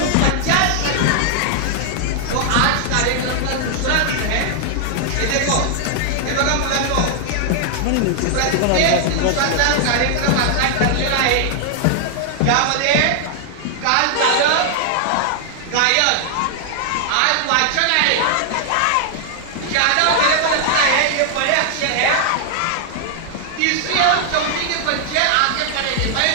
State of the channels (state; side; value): different; both; correlation 0.00